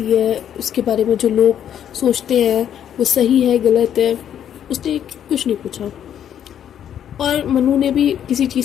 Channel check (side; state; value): right; quieter; 9.7 dB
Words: है, उसके बारे में जो लोग सोचते हैं वो सही है गलत है, उसने कुछ नहीं पूछा। और मनु ने भी किसी